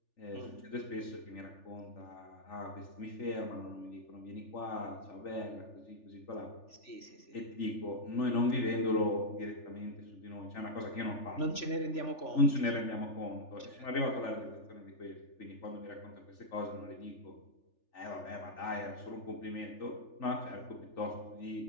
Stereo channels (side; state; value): right; late; 3.4 ms